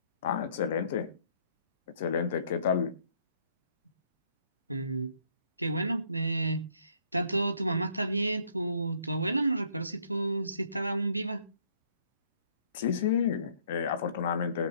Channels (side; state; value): both; inverted; correlation -0.66